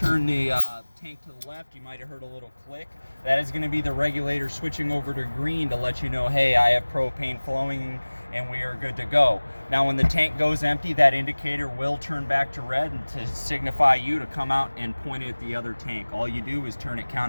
the tank to the left, you might have heard a little click. That is going to be the regulator switching over to green to let you know, hey, I have propane flowing and we are good to go. Now when the tank goes empty, that indicator will turn back to red and to signify you to come out and point it at the other tank. All you do is turn it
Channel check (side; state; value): both; inverted; correlation -1.00